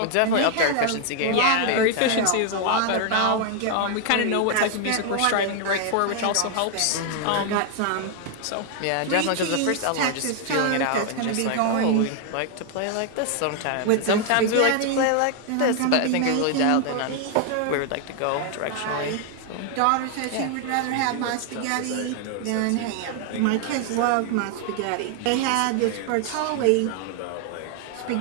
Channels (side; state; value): both; different; correlation 0.00